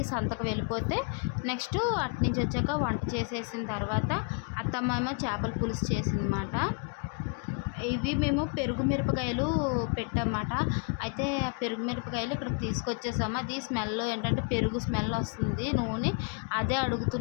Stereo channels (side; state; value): right; quieter; 39.9 dB